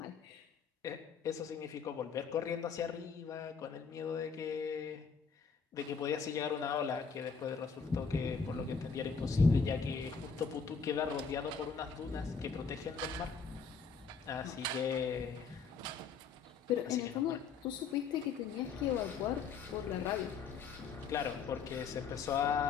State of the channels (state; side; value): quieter; right; 5.6 dB